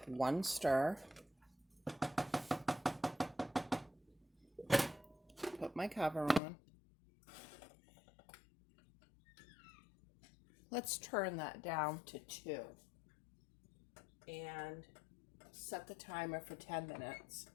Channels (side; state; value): right; drops out; at 6.4 s